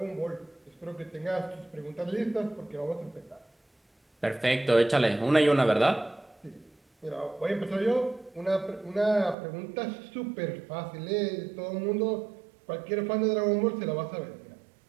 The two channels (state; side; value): drops out; left; at 9.3 s